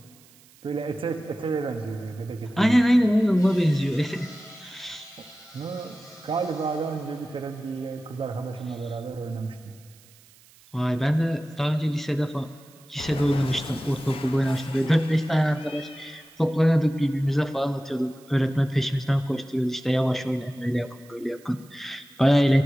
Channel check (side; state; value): right; noise; hiss, 27 dB below the sound